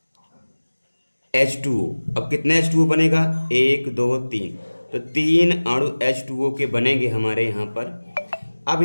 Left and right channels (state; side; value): inverted; both; correlation -1.00